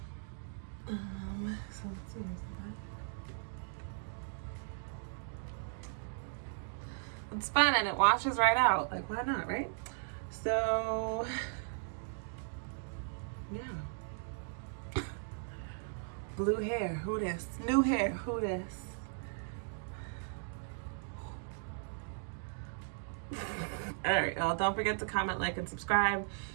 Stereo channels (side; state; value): left; silent; digital silence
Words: So let's see, It's fun and it washes right out. Like, why not, right? So, yeah. Blue hair, who this? New hair, who this? All right, y'all, don't forget to comment, like, and subscribe.